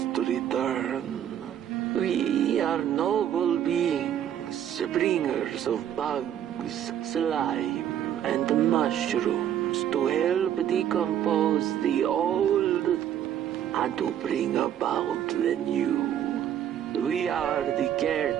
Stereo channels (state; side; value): quieter; left; 10.3 dB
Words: return. We are noble beings, bringers of bugs, slime, and mushrooms to help decompose the old and to bring about the new. We are the